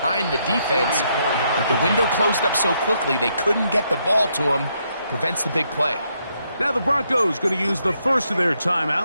the defense, but the window closed up so quickly they couldn't get the ball to him. Prevents the big play. Now the Broncos going to use the first of their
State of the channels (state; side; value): inverted; both; correlation -0.76